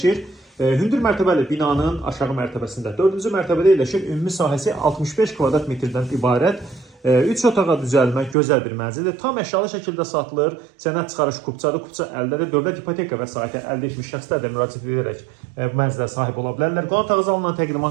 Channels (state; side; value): drops out; left; at 8.3 s